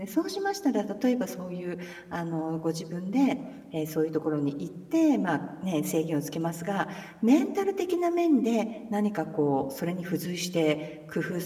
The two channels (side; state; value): both; identical; correlation 1.00